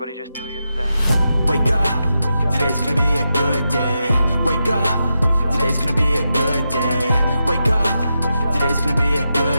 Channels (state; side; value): inverted; both; correlation -0.87